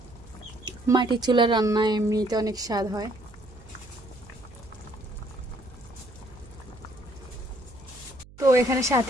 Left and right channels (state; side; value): noise; right; hum, 21 dB below the sound